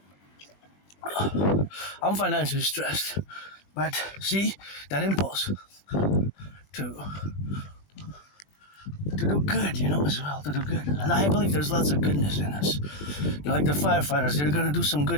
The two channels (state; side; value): late; right; 20 ms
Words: but see, that impulse to do good, as well, to do good. And I believe there's lots of goodness in us. Like the firefighters, they're going to do some